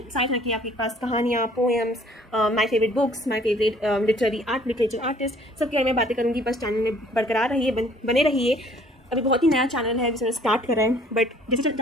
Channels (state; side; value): normal; both; correlation 0.57